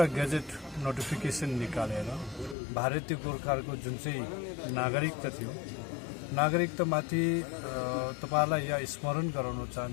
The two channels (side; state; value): right; drops out; at 2.6 s